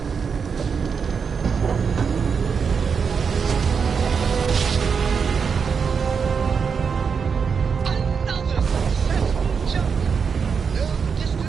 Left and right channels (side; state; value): left; quieter; 6.1 dB